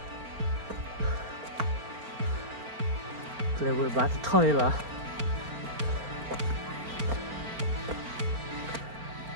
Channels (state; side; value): late; left; 4.4 ms